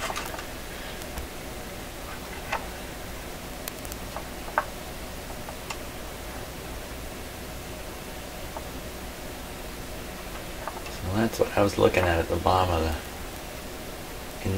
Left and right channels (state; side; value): identical; both; correlation 1.00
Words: So that's what I was looking at the bottom of the